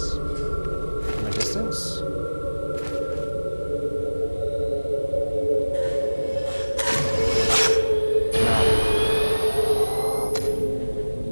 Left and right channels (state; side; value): inverted; both; correlation -1.00